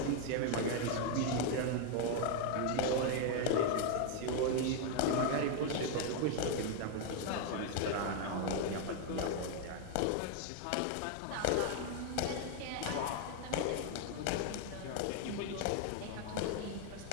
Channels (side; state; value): both; different; correlation 0.00